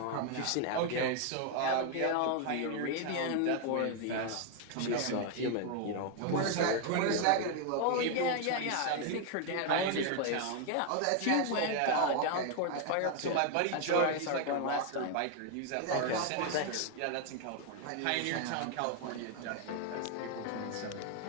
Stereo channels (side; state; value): both; different; correlation 0.01